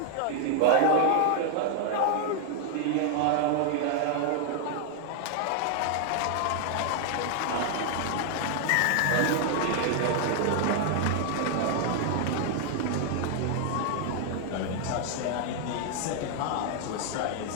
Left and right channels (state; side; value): different; both; correlation 0.00